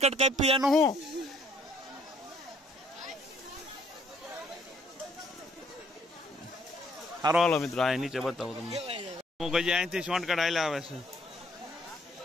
કાપી એનું શું. સારો હાલો મિત્રો, આ નીચે બતાવું તમને. હું કઈ અહીંથી શોર્ટકટ હાલ્યા આવે છે.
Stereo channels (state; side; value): normal; both; correlation 0.64